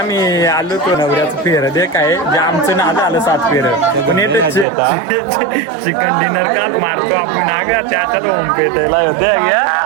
आलो तो नवऱ्याचं फेर दे काय जे आमचं नाद आलं 7 फेर पण येते चिकन डिनर का मारतो आपण नागा त्याच्यात होम पेटायला होते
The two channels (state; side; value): drops out; left; at 4.7 s